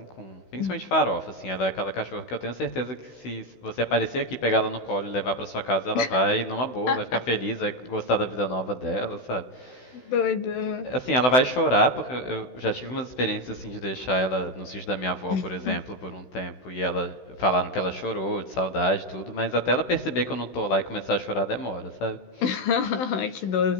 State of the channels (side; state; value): right; late; 16 ms